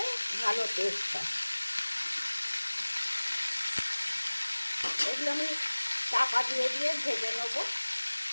ভালো টেস্ট হয়। এগুলো আমি চাপা দিয়ে দিয়ে ভেজে নেব।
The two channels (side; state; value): both; inverted; correlation -1.00